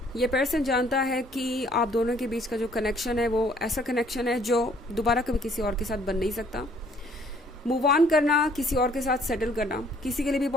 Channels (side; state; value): both; normal; correlation 0.61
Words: ये पर्सन जानता है कि आप दोनों के बीच का जो कनेक्शन है वो ऐसा कनेक्शन है जो दोबारा कभी किसी और के साथ बन नहीं सकता। मूव ऑन करना, किसी और के साथ सेटल करना किसी के लिए भी